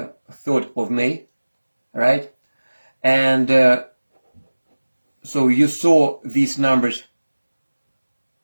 3rd of May, right? And so you saw these numbers,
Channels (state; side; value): inverted; both; correlation -1.00